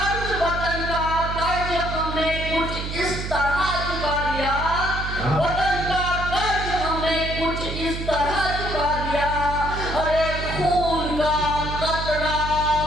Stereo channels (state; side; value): noise; right; hum, 5 dB below the sound